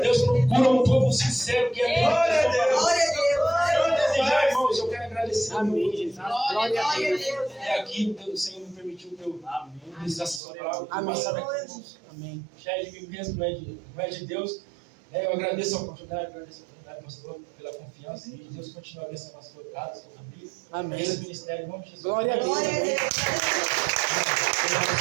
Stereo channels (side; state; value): left; drops out; at 10.4 s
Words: Deus procura um povo sincero que é Glória a Deus. desejar, irmãos. Eu quero agradecer. Amém, Jesus. Glória a Deus. É aqui, o Senhor me permitiu que eu ministrasse essa palavra. Amém. Amém. Já é de mim mesmo, não é de Deus. Eu agradeço a oportunidade, pastor, pela confiança. E Deus continue abençoando a sua casa, a sua família. Amém. Esse ministério, em nome de Jesus. Glória a Deus. Glória a Deus.